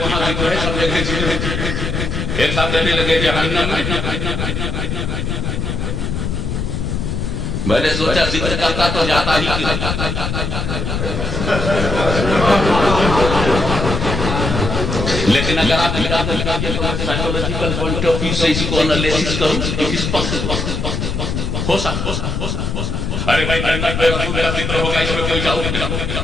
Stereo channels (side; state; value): left; noise; rumble, 2 dB below the sound